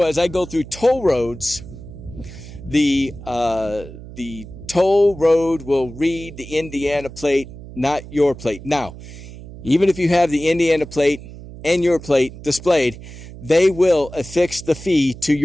as I go through toll roads, the toll road will read the Indiana plate, not your plate. Now, even if you have the Indiana plate and your plate displayed, they will affix the fee to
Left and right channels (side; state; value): right; noise; hum, 15 dB below the sound